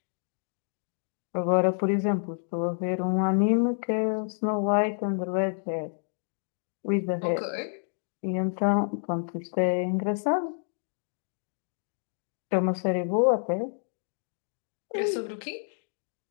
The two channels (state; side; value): silent; right; digital silence